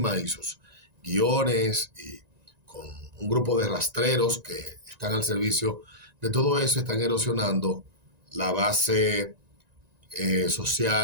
y sus guiones y con un grupo de rastreros que están al servicio de todo eso, están erosionando la base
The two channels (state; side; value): late; left; 1.9 ms